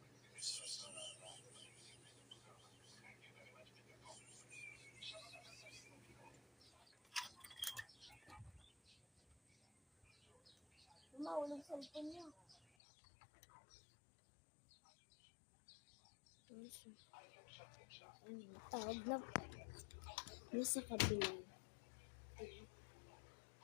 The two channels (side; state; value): right; drops out; at 12.6 s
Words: Mahulog cellphone niya. Tawag na nasa kabila.